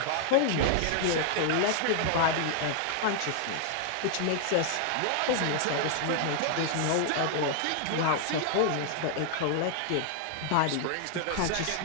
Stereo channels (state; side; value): different; both; correlation 0.00